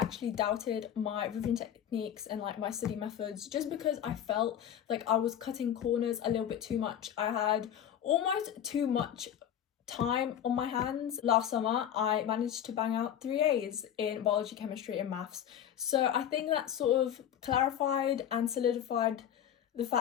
doubted my revision techniques and like my study methods, just because I felt like I was cutting corners a little bit too much. I had almost too much time on my hands. Last summer I managed to bang out 3 A's in biology, chemistry and maths, so I think that sort of clarified and solidified the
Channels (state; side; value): quieter; right; 9.9 dB